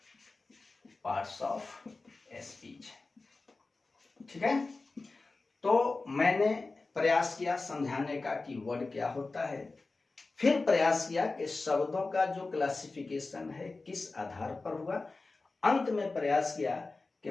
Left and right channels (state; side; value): quieter; right; 3.6 dB